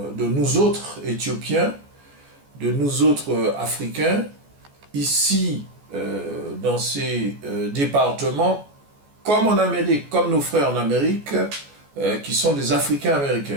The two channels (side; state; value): left; late; 14 ms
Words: nous autres Éthiopiens, de nous autres Africains, ici, dans ces départements, comme en Amérique, comme nos frères en Amérique, qui sont des Africains